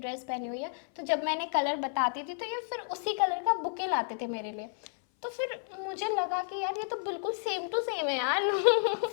पहनी हुई है, तो जब मैंने कलर बताती थी तो ये फिर उसी कलर का बुके लाते थे मेरे लिए। तो फिर मुझे लगा कि यार ये तो बिल्कुल सेम टू सेम है यार।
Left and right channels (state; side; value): silent; right; 57 dB below the other